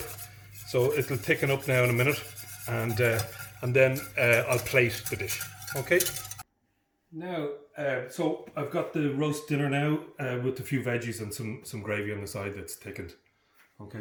So it'll thicken up now in a minute, and then I'll plate the dish. Okay. Now, so I've got the roast dinner now with a few veggies and some gravy on the side that's thickened.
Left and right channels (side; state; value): both; identical; correlation 1.00